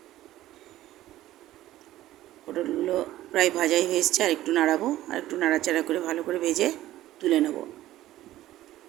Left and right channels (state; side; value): quieter; left; 14.6 dB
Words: পটলগুলো প্রায় ভাজাই হয়ে এসছে, আর একটু নাড়াবো, আর একটু নাড়াচাড়া করে ভালো করে ভেজে তুলে নেব।